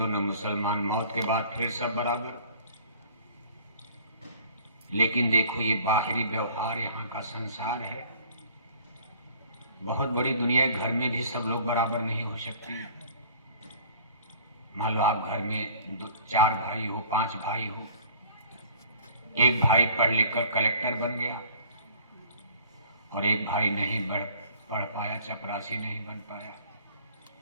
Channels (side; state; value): both; inverted; correlation -0.51